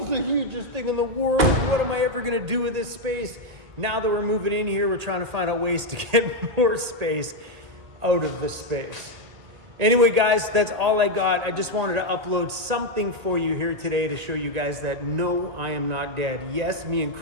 is the hugest thing in the world. What am I ever gonna do with this space? Now that we're moving in here, we're trying to find out ways to get more space out of the space. Anyway, guys, that's all I got. I just wanted to upload something for you here today to show you guys that no, I am not dead. Yes, me and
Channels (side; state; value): left; late; 1.8 ms